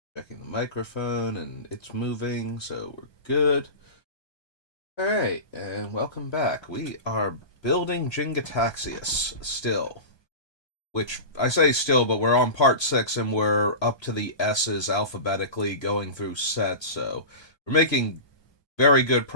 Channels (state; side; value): late; right; 1.2 ms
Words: Checking the microphone, and it's moving, so we're good. Alright, and welcome back. We are building Jin-Gitaxias still. Which, I say still, but we're on part 6, and we're up to the S's alphabetically going through sets, so we're making very good